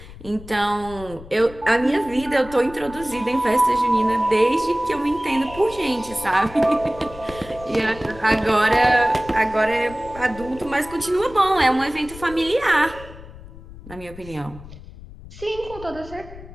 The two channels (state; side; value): noise; left; rumble, 17 dB below the sound